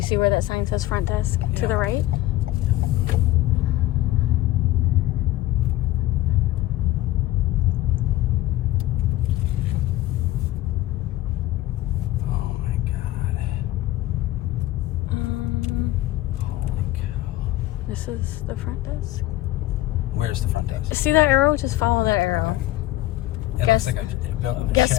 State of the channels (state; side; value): quieter; right; 16.1 dB